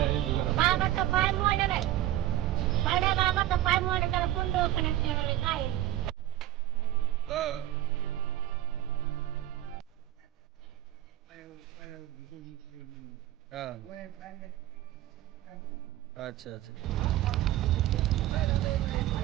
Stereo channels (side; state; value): left; quieter; 14.1 dB